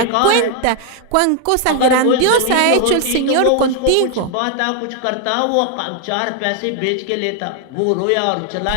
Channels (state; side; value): different; both; correlation 0.00